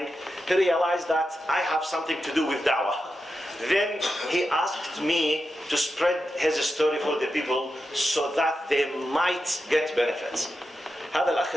He realized that I have something to do with da'wah. Then he asked me to spread his story for the people so that they might get benefits. هذا الأخ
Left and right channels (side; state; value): both; normal; correlation 0.89